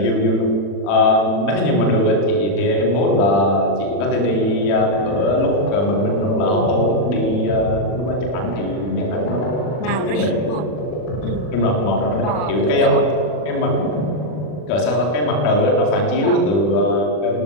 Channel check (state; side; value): late; right; 40 ms